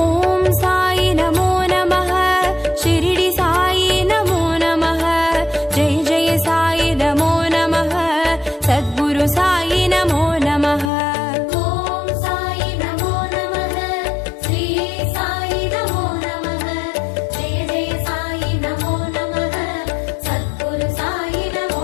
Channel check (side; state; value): right; drops out; at 10.9 s